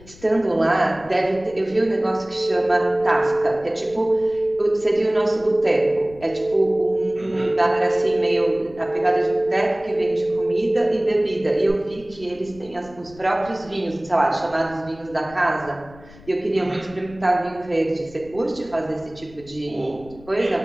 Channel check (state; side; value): noise; left; rumble, 22 dB below the sound